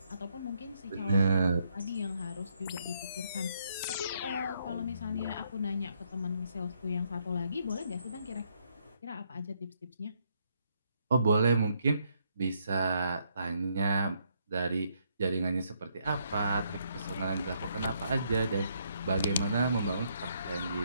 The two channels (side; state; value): both; inverted; correlation -0.73